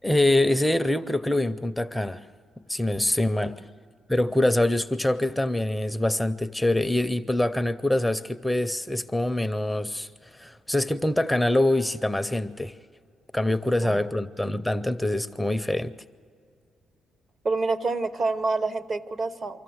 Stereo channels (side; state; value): both; normal; correlation 0.95